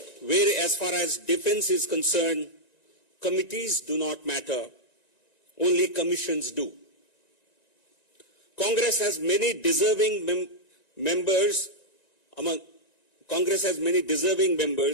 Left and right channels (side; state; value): right; late; 1.9 ms